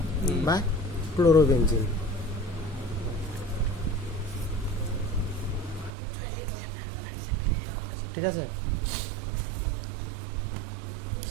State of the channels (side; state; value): left; drops out; at 5.9 s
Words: বা ক্লোরোবেনজিন। ঠিক আছে,